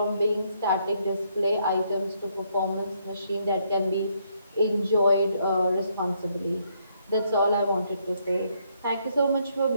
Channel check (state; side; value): inverted; both; correlation -0.73